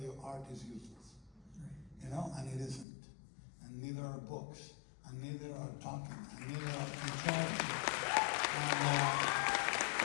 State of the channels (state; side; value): drops out; right; at 2.9 s